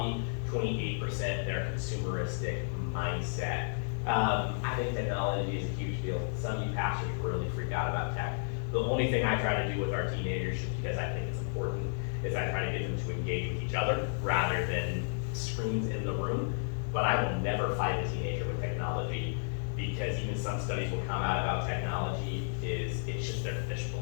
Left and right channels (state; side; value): silent; right; digital silence